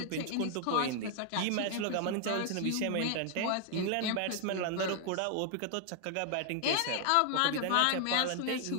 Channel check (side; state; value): both; different; correlation 0.00